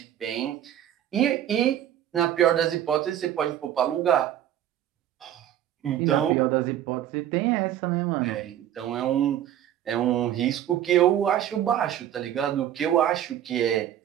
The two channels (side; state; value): left; quieter; 11.2 dB